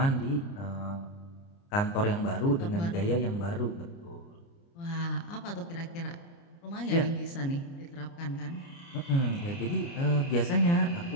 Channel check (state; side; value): late; right; 29 ms